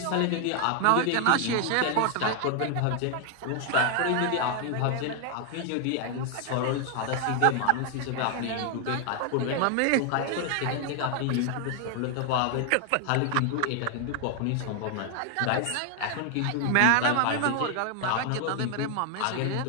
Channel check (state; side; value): different; both; correlation 0.00